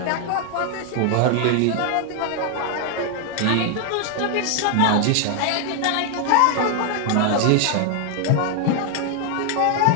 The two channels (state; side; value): different; both; correlation 0.00